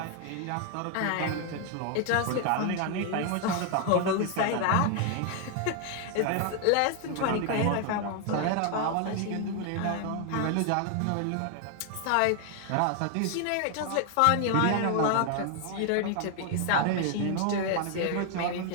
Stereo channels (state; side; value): different; both; correlation 0.00